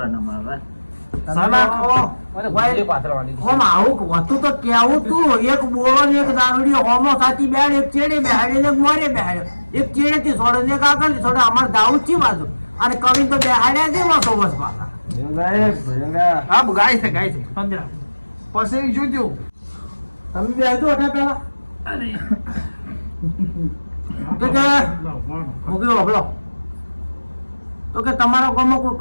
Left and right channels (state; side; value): inverted; both; correlation -1.00